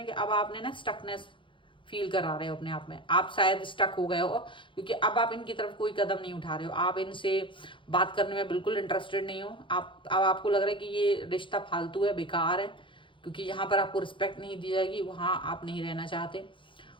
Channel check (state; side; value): late; right; 0.24 ms